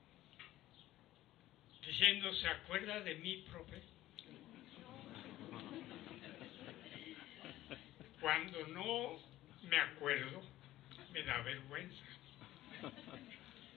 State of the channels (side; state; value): right; quieter; 15.0 dB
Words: diciendo, ¿se acuerda de mí, profe? Cuando no me acuerdo, me da vergüenza.